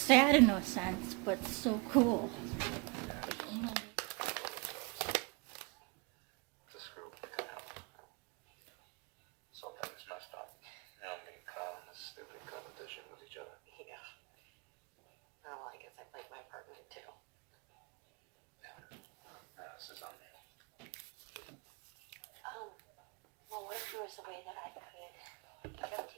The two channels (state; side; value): quieter; left; 29.5 dB